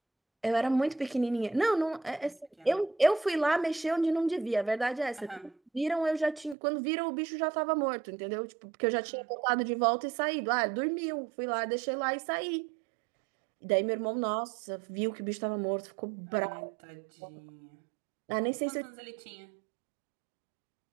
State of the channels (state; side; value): drops out; left; at 6.6 s